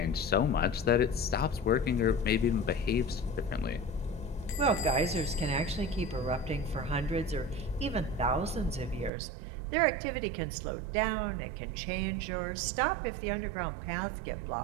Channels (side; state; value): left; drops out; at 9.1 s